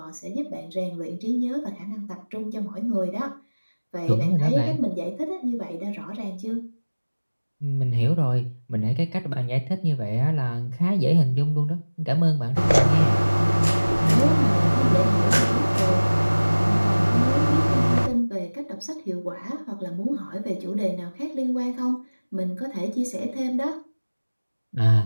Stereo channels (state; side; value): inverted; both; correlation -1.00